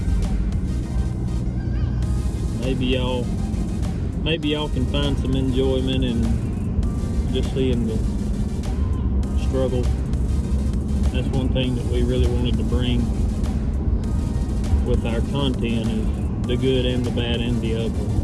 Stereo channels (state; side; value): identical; both; correlation 1.00